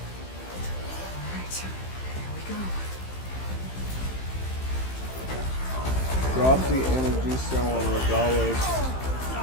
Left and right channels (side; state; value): right; late; 15 ms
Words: Drop the energy cell on Regalos.